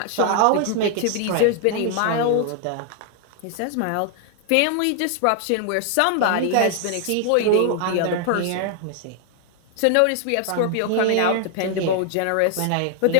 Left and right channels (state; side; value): different; both; correlation 0.00